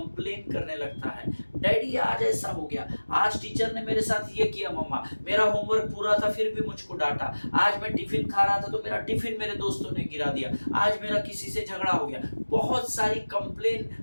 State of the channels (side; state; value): both; inverted; correlation -1.00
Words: करने लगता है, डैडी आज ऐसा हो गया, आज टीचर ने मेरे साथ ये किया, मम्मा मेरा होमवर्क पूरा था फिर भी मुझको डांटा, आज मैं टिफिन खा रहा था तो मेरा टिफिन मेरे दोस्तों ने गिरा दिया, आज मेरा किसी से झगड़ा हो गया। बहुत सारी कंप्लेन